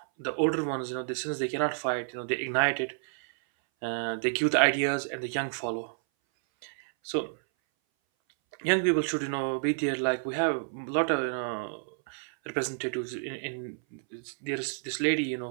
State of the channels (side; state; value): left; silent; 58 dB below the other